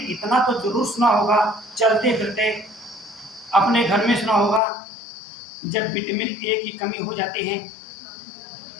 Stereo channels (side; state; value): right; drops out; at 4.6 s